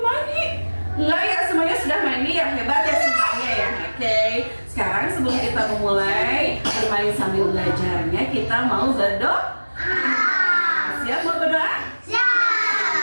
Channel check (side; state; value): both; inverted; correlation -1.00